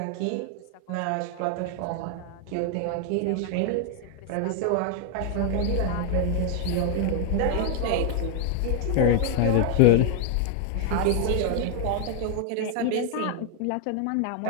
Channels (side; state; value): both; different; correlation 0.00